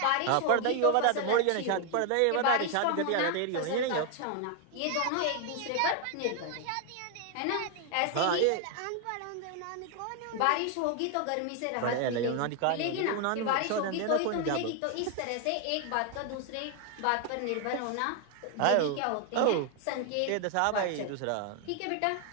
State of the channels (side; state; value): both; different; correlation 0.00